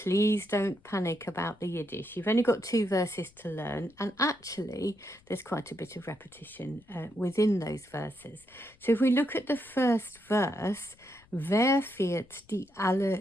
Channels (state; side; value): noise; left; rumble, 29 dB below the sound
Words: don't panic about the Yiddish. You've only got 2 verses to learn, and actually there's quite a bit of repetition within those verses. So if we look at the first verse, Firt Di